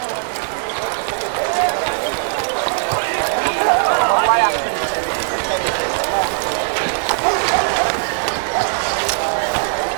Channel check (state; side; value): silent; left; digital silence